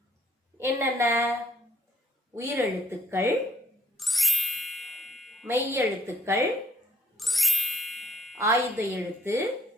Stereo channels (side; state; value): both; normal; correlation 0.67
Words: என்னென்ன? உயிரெழுத்துக்கள், மெய்யெழுத்துக்கள், ஆயுத எழுத்து,